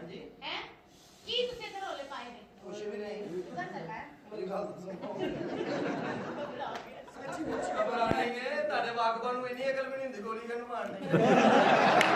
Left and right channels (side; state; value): both; identical; correlation 1.00